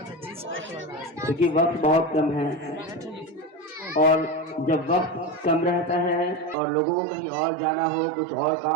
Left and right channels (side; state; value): left; drops out; at 6.6 s